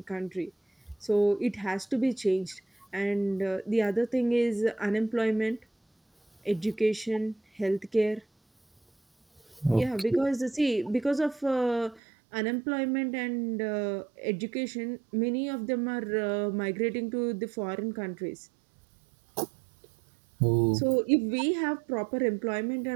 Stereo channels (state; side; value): drops out; left; at 12.0 s